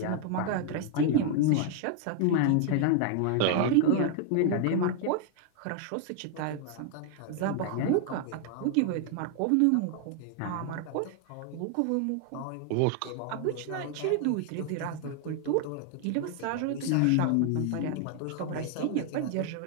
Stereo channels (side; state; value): both; different; correlation 0.00